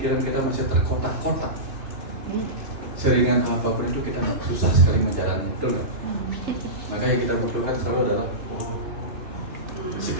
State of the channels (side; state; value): left; late; 2.9 ms